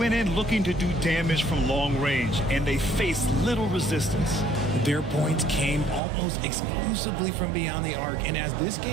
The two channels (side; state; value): left; drops out; at 6.0 s